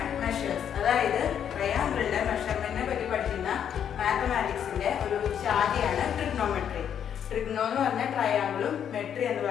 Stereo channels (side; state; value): right; quieter; 8.8 dB